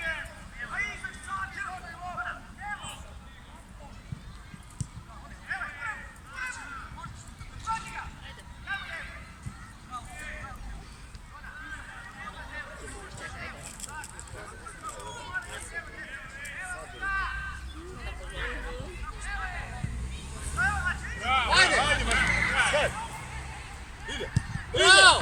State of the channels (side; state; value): both; identical; correlation 1.00